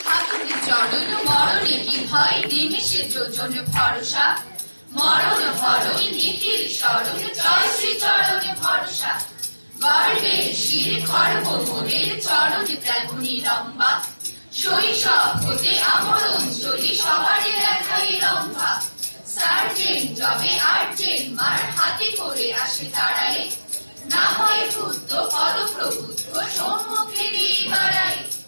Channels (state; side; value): inverted; both; correlation -1.00